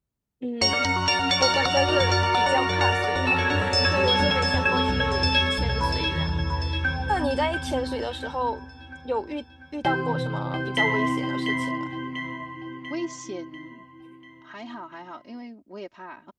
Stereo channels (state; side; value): identical; both; correlation 1.00